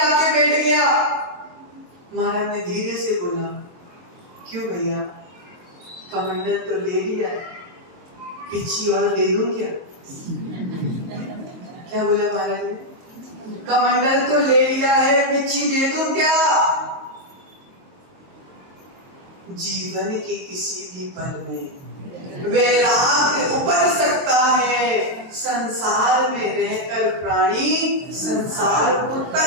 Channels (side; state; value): left; late; 22 ms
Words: बैठ गया। महाराज ने धीरे से बोला, क्यों भैया, कमंडल तो ले लिया, पिछी और दे दूं क्या? क्या बोला महाराज ने? कमंडल तो ले लिया है, पिछी दे दूं क्या? जीवन के किसी भी पल में वैराग्य उपज सकता है। संसार में रहकर प्राणी संसार को